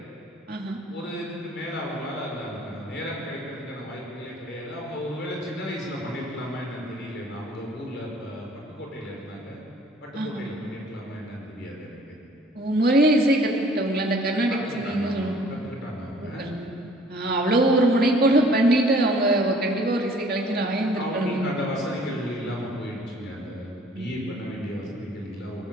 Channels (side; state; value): both; normal; correlation 0.55